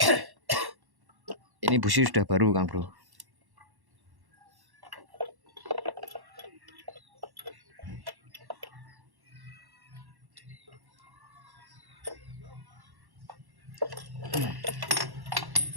Ini busi sudah baru Kang Bro.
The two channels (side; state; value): left; late; 1.1 ms